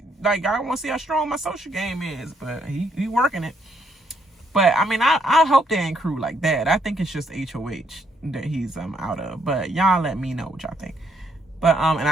want to see how strong my social game is, but he working it. But I mean, I hope they ain't crew like that. I think it's just HOH that he's out of. But y'all let me know what y'all think. But and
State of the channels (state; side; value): normal; both; correlation 0.73